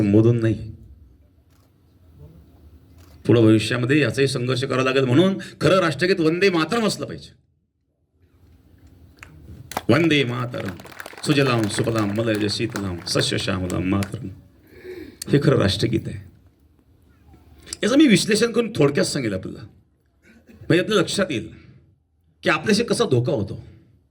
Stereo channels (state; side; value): identical; both; correlation 1.00